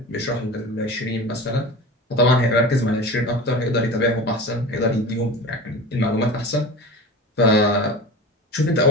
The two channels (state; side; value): normal; both; correlation 0.33